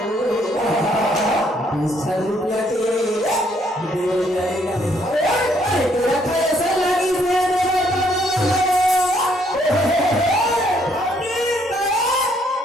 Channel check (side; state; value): both; normal; correlation 0.68